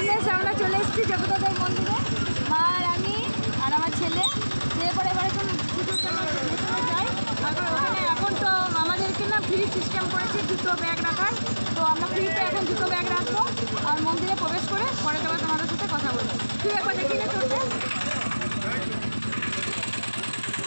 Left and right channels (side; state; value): both; inverted; correlation -1.00